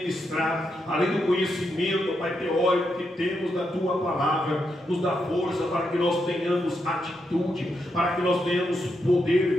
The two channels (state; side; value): normal; both; correlation 0.83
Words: além do conhecimento, Pai, teórico que temos da Tua palavra, nos dá força para que nós tenhamos atitude, para que nós tenhamos